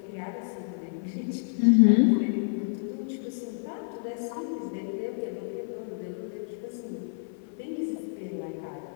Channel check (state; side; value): silent; right; 58 dB below the other